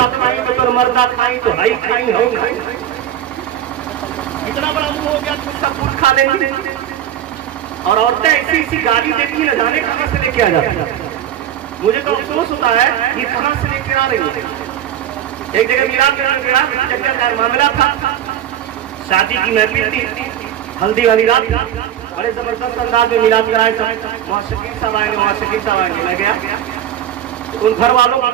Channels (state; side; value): quieter; left; 10.8 dB